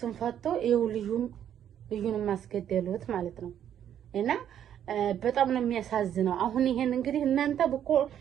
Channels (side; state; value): left; quieter; 9.9 dB